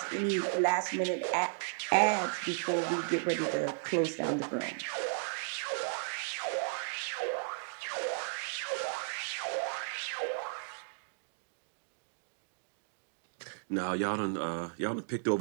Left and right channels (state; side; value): silent; left; digital silence